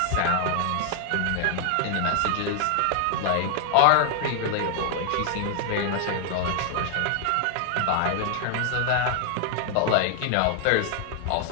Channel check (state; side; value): different; both; correlation 0.00